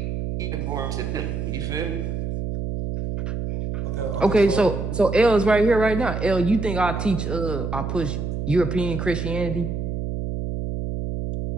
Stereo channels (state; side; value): noise; right; hum, 3 dB below the sound